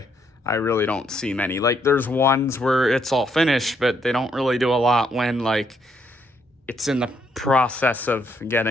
I really don't see many. Like, there's ones where it's all finished, but they don't really do a lot when, like, it's in the process of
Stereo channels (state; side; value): normal; both; correlation 0.73